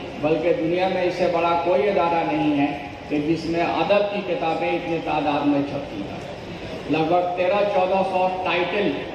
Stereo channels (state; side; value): identical; both; correlation 1.00